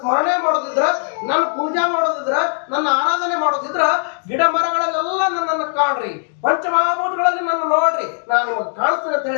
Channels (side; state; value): right; silent; digital silence